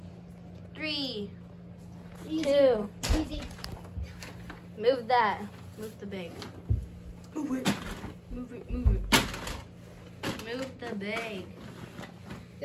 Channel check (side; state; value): both; identical; correlation 1.00